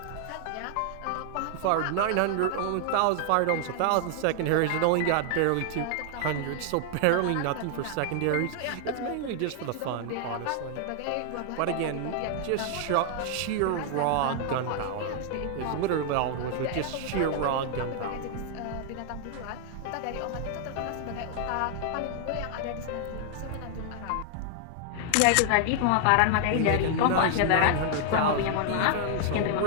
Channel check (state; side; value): different; both; correlation 0.00